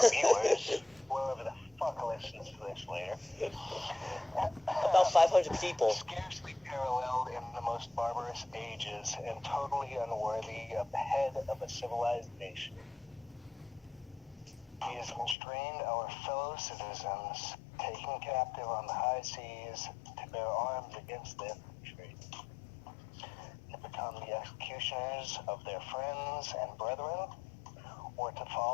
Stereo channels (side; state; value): right; drops out; at 15.4 s